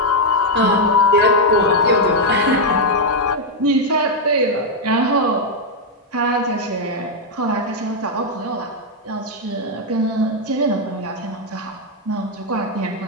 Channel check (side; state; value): both; normal; correlation 0.00